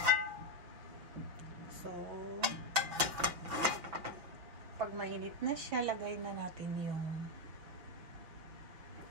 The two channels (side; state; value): left; late; 6.2 ms